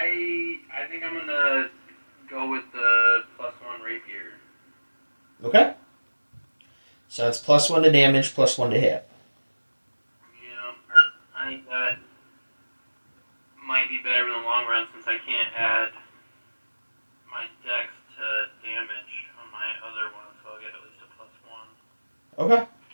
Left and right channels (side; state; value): both; inverted; correlation -1.00